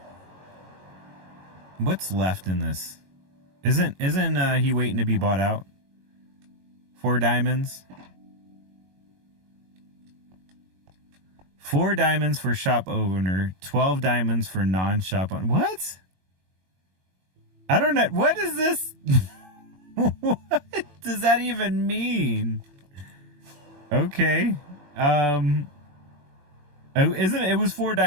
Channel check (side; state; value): left; late; 22 ms